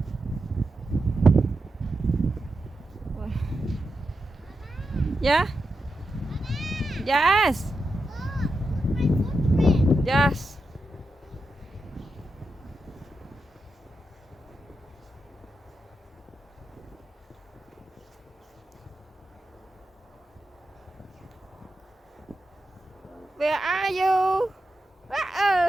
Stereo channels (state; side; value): normal; both; correlation 0.88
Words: Yeah. Yes. Yes. Where are you?